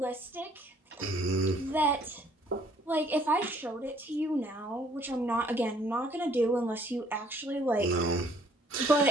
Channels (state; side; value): normal; both; correlation 0.61